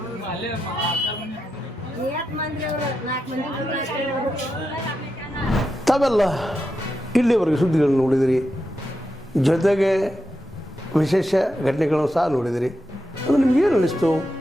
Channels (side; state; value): both; normal; correlation 0.87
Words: ತಾವೆಲ್ಲ ಇಲ್ಲಿವರೆಗೆ ಸುದ್ದಿಗಳನ್ನು ನೋಡಿದಿರಿ, ಜೊತೆಗೆ ವಿಶೇಷ ಘಟನೆಗಳನ್ನು ಸಹ ನೋಡಿದಿರಿ. ಅದು ನಿಮಗೇನು ಅನ್ನಿಸ್ತು?